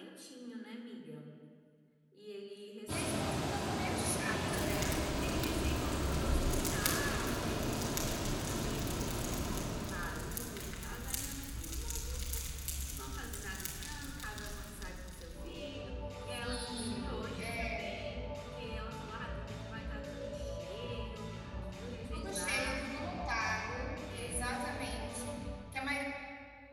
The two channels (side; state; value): both; identical; correlation 1.00